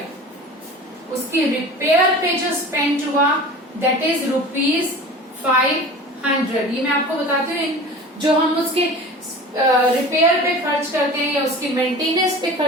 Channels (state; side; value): normal; both; correlation 0.38